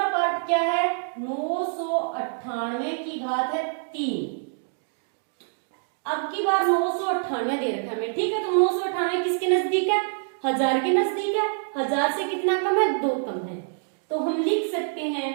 पार्ट क्या है, 998 की घात है 3। अब की बार 998 दे रखा है हमें। ठीक है, तो 998 किसके नजदीक है, 1000 के नजदीक है। 1000 से कितना कम है, 2 कम है। तो हम लिख सकते हैं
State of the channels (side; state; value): left; silent; digital silence